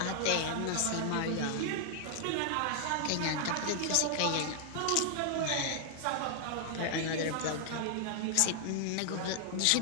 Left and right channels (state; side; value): different; both; correlation 0.00